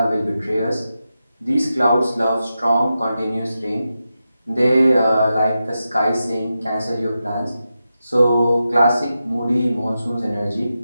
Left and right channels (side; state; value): both; inverted; correlation -0.90